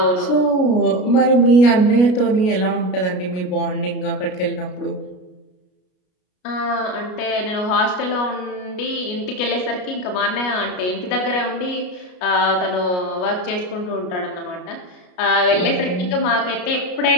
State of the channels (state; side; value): late; right; 33 ms